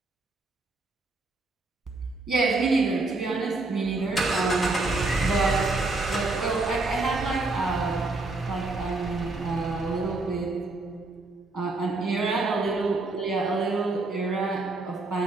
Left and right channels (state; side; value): quieter; left; 3.2 dB